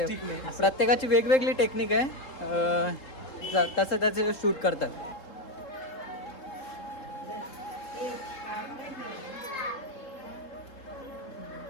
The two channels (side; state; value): right; late; 3.7 ms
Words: प्रत्येकाची वेगवेगळी टेक्निक आहे. तसं त्याचं शूट करतात.